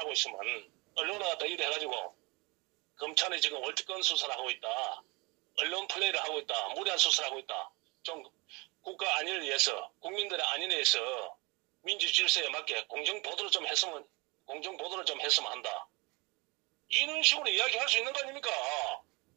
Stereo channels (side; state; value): left; quieter; 27.0 dB